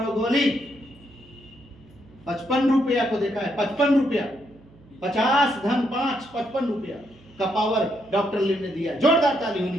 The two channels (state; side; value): noise; right; hum, 26 dB below the sound